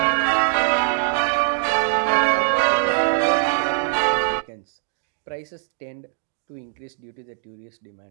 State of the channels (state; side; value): silent; left; digital silence